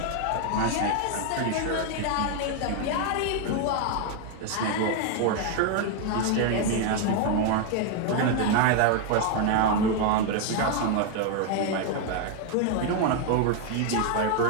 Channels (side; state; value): both; different; correlation 0.00